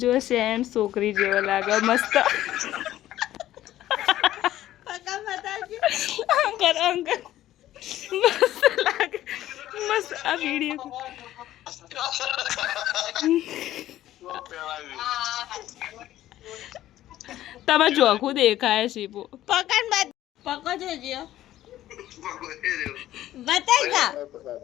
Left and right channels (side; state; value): right; quieter; 13.7 dB